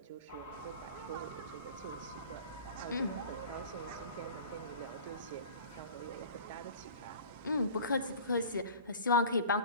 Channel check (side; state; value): both; inverted; correlation -0.41